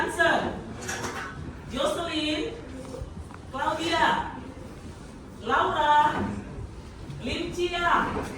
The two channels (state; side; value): identical; both; correlation 1.00